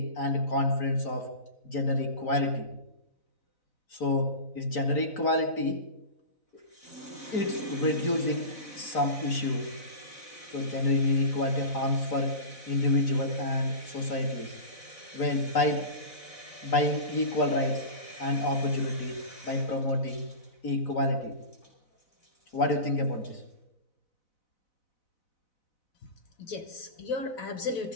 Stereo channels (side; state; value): right; late; 4.0 ms